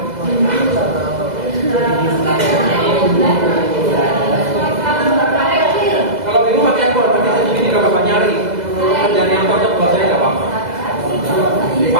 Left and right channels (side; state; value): left; late; 2.0 ms